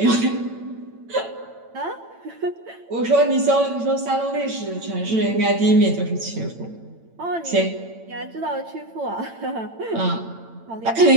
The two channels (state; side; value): late; left; 8.9 ms